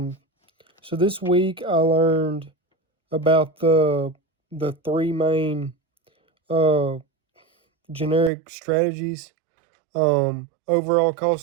so this week I learned about the three main uh, generic strategies: overall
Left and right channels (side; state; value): left; drops out; at 8.3 s